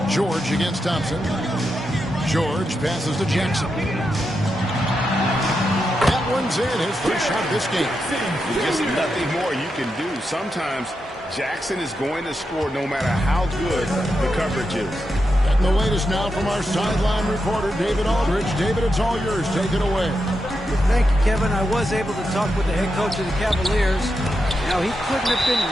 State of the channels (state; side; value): normal; both; correlation 0.86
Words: George against Thompson. George passes to Jackson. That one's in, his first shot of this game. Just nothing more you can do. Sometimes Jackson is going to score no matter how good the coverage is. Getting the latest now from our sideline reporter, David Aldridge. David, it's all yours. Take it away. Thank you, Kevin. I was able to talk with the head coach of the Cavaliers. Now, he couldn't have been